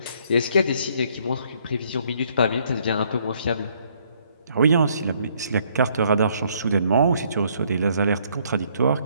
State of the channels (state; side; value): inverted; both; correlation -0.67